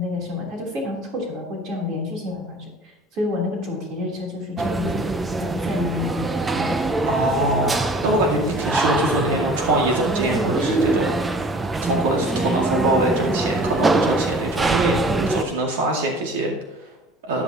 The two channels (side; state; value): both; normal; correlation 0.46